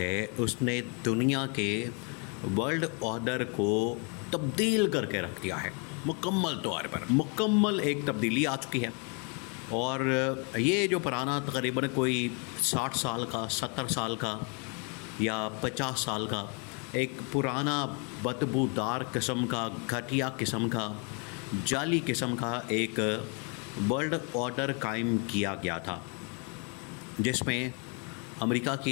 اس نے دنیا کے ورلڈ آرڈر کو تبدیل کر کے رکھ دیا ہے، مکمل طور پر مکمل ایک تبدیلی آ چکی ہے۔ اور یہ جو پرانا تقریباً کوئی 60 سال کا، 70 سال کا یا 50 سال کا ایک پرانا بدبودار قسم کا، گھٹیا قسم کا، جعلی قسم کا ایک ورلڈ آرڈر قائم کیا گیا تھا، جس میں امریکہ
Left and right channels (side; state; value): right; quieter; 36.1 dB